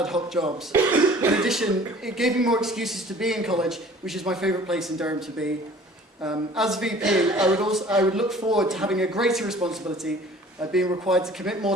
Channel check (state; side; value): normal; both; correlation 0.49